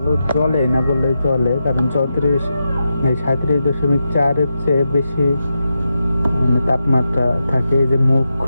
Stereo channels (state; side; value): inverted; both; correlation -0.87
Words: জ্বলে না বললেই চলে, কারণ 37.4-এর চেয়ে বেশি তাপমাত্রা থাকে। এই যে মুখ